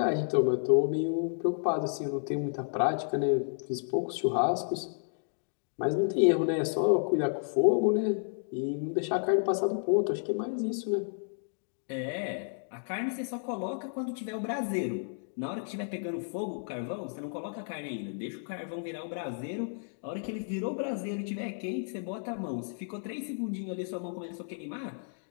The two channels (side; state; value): right; silent; digital silence